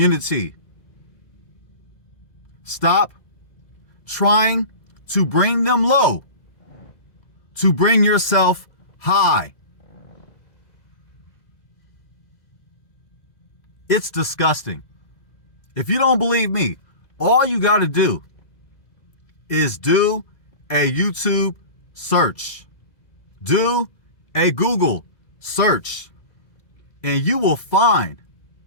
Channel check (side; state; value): right; late; 2.0 ms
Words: Stop trying to bring them low, to bring yourself high. It's disgusting. If you don't believe me, all you got to do is do a YouTube search. Do a Google search. And you will find